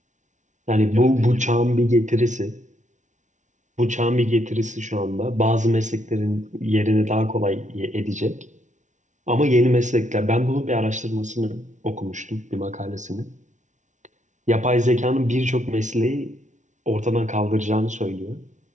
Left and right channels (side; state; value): left; late; 0.36 ms